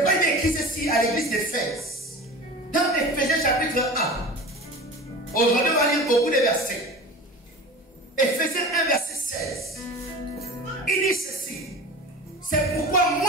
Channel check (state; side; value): normal; both; correlation 0.35